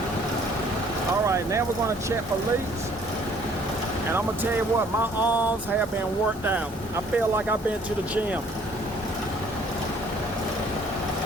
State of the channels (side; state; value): both; normal; correlation 0.59